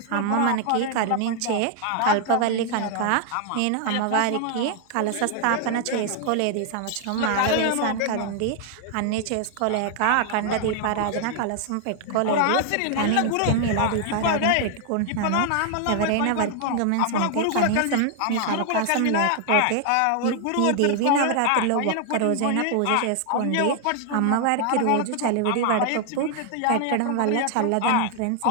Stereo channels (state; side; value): different; both; correlation 0.00